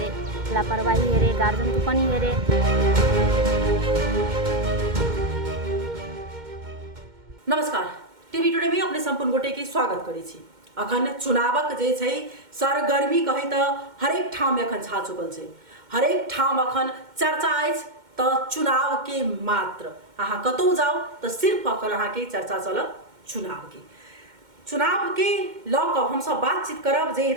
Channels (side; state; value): left; late; 2.1 ms